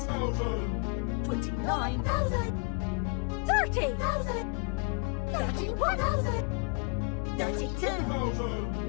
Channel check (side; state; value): right; quieter; 32.9 dB